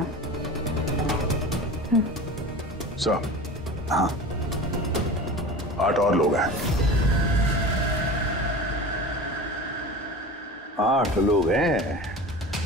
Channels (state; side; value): normal; both; correlation 0.34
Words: सर, हाँ, 8 और लोग हैं। 8 लोग हैं।